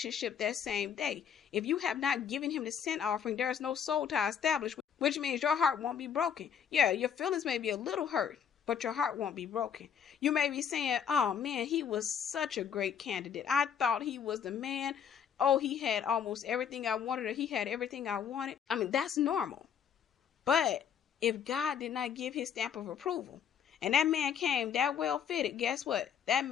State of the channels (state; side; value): quieter; right; 8.1 dB